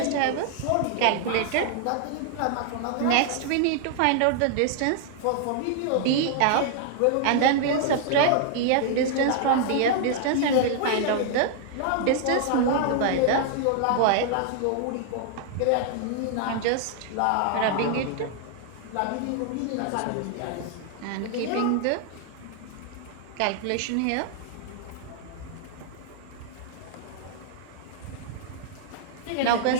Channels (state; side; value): different; both; correlation 0.00